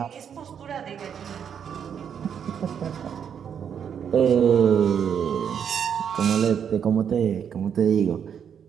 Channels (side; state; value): left; quieter; 8.0 dB